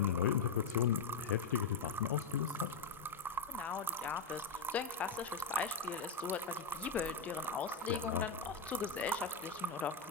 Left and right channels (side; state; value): right; quieter; 4.8 dB